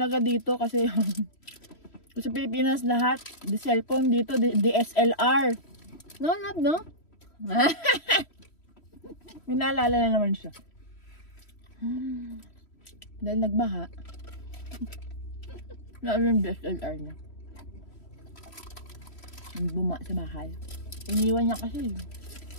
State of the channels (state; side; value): late; right; 3.1 ms